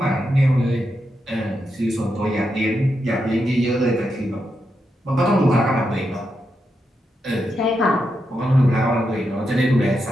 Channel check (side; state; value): both; normal; correlation 0.85